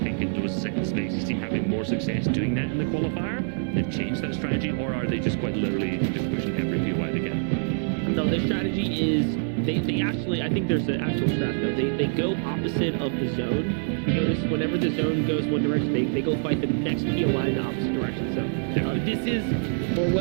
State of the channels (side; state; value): left; silent; 55 dB below the other